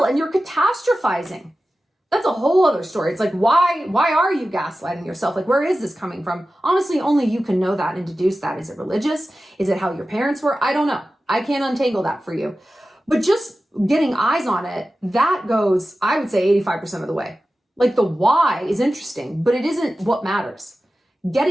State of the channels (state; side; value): normal; both; correlation 0.94